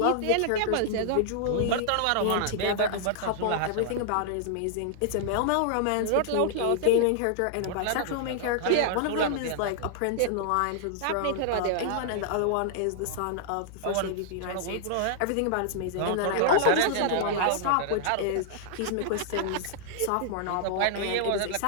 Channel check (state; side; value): different; both; correlation -0.01